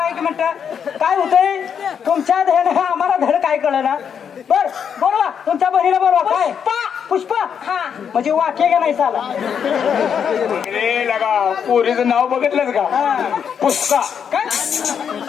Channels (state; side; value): quieter; right; 7.5 dB